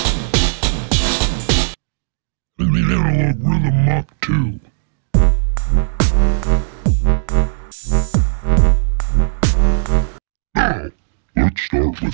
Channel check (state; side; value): silent; left; digital silence